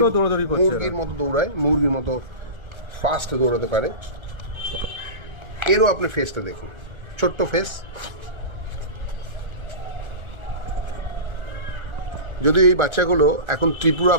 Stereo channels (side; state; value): left; late; 1.3 ms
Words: দৌড়াদৌড়ি করছে, মুরগির মতো দৌড়ায়, মুরগির মতো ফাস্ট দৌড়াতে পারে। এরও আপনি ফেসটা দেখুন, ছোট্ট ফেস। যদিও এই বাচ্চাগুলো এখন